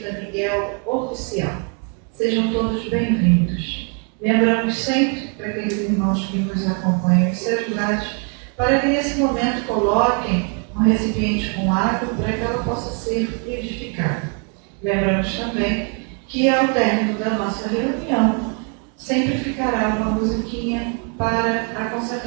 Miguel Oficial. Sejam todos bem-vindos. Lembramos sempre para aqueles irmãos que nos acompanham os celulares para que nesse momento coloquem um recipiente com água para que ela possa ser edificada. Lembramos também que ao término da nossa reunião sempre ficará uma musiquinha para a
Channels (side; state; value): left; quieter; 39.1 dB